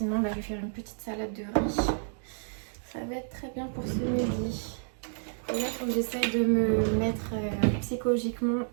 je vais faire une petite salade de riz. Ça va être très bien pour ce midi. Et là il faut que j'essaye de me mettre psychologiquement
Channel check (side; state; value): left; silent; digital silence